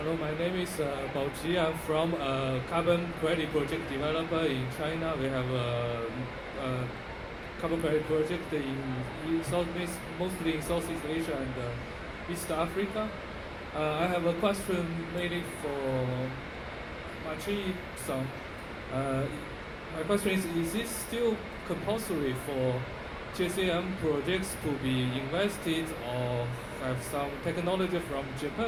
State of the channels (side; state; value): both; identical; correlation 1.00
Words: my name is Bao Qi. I'm from a carbon credit project developer in China. We have a carbon credit project in Southeast, mostly in Southeast Asia and East Africa. I have a question mainly for Machi-san. My question is it still compulsory for GCM projects to be invested or have some technology from